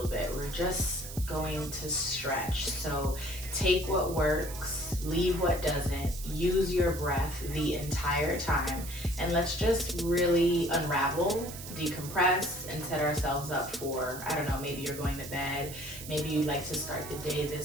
bit. We're just going to stretch. So take what works, leave what doesn't, use your breath the entire time, and let's just really unravel, decompress, and set ourselves up for, I don't know, maybe you're going to bed, maybe you like to start the day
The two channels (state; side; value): noise; right; hiss, 12 dB below the sound